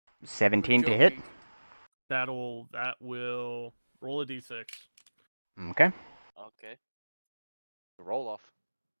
17 to hit. That will roll a d6. Okay. Okay. Roll off.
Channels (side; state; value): both; inverted; correlation -1.00